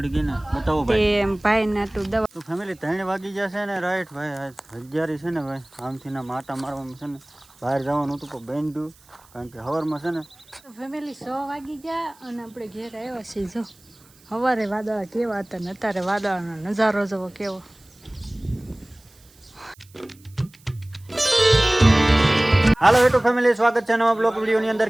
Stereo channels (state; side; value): noise; right; hiss, 28 dB below the sound